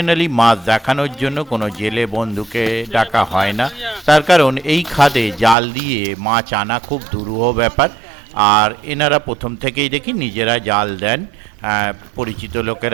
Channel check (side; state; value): left; drops out; at 5.6 s